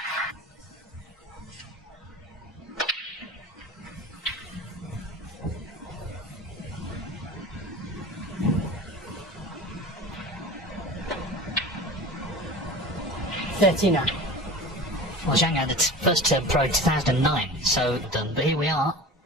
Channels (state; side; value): normal; both; correlation 0.35